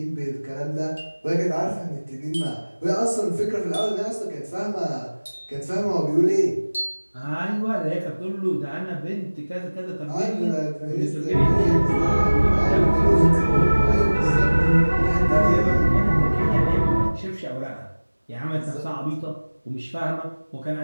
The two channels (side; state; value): both; inverted; correlation -1.00